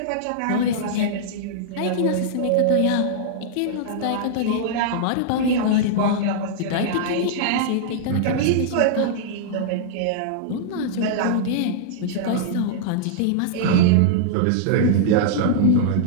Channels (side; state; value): both; different; correlation -0.02